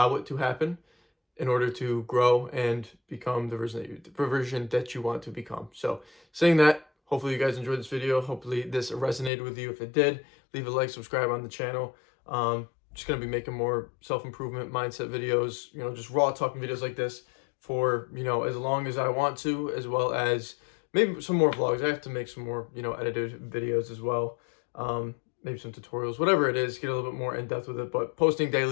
it to happen in order to grow and become the version that you want to become. So saying that, hopefully you guys enjoyed this video. Hopefully this resonated with you. If it did, leave a like, subscribe on the channel. Just going to be making more self-improvement mindset videos, you know, just raw talking videos like this for, you know, as long as I want to, as well as maybe some more vlogs. I have to make some more, you know, edited videos as well. Maybe some tutorials, whatever it is, get a little bit more in depth with it. But posting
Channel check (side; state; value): right; drops out; at 9.3 s